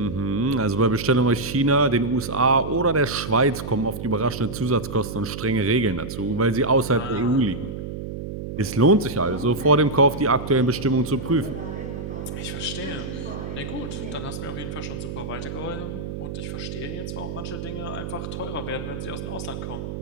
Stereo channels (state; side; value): noise; right; hum, 7 dB below the sound